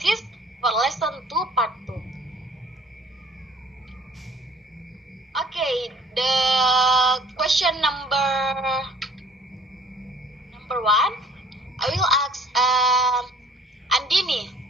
for lesson 2 part 2. Okay, the question number 1, I will ask Andini.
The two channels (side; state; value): both; normal; correlation 0.54